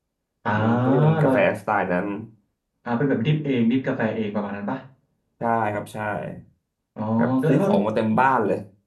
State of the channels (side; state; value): both; identical; correlation 1.00